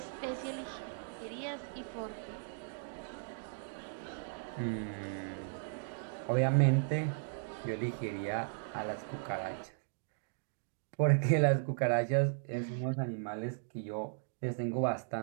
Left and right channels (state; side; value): silent; left; digital silence